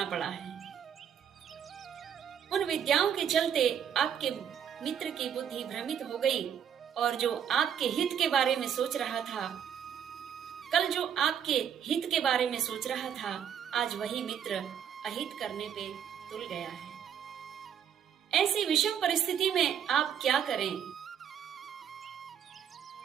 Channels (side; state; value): left; quieter; 8.6 dB